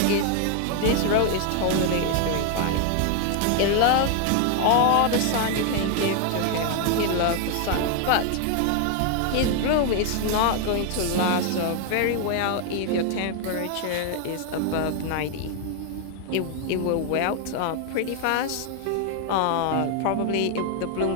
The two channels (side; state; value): both; different; correlation 0.00